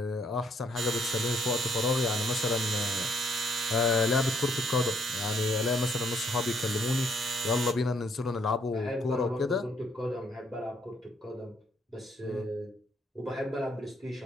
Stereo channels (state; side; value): normal; both; correlation 0.70